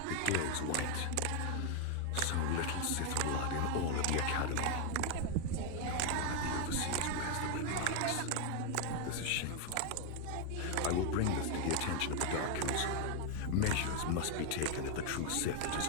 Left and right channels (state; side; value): different; both; correlation 0.00